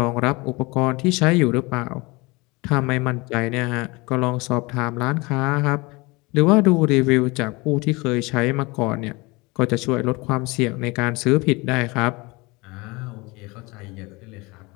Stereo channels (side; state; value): right; quieter; 24.9 dB